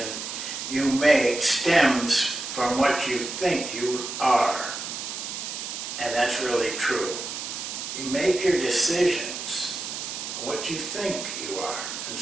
you make stems from what you think you are. And that's really true. You make your decisions on what you think you are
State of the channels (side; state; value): right; noise; hiss, 6 dB below the sound